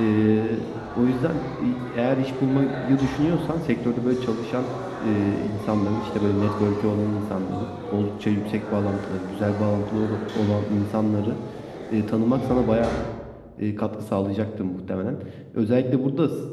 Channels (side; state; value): both; identical; correlation 1.00